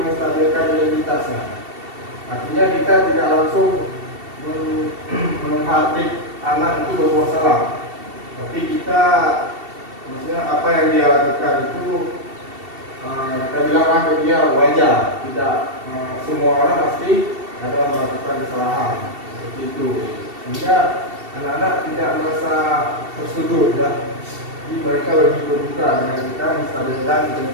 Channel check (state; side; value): late; left; 2.7 ms